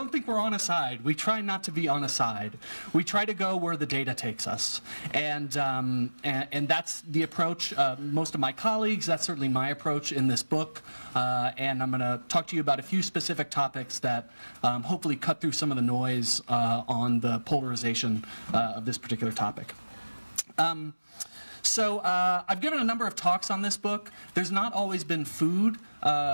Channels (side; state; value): both; inverted; correlation -1.00